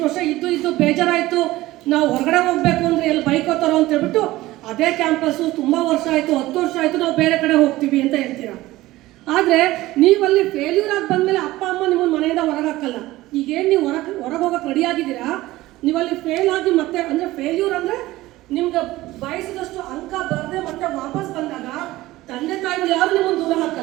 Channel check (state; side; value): quieter; left; 17.5 dB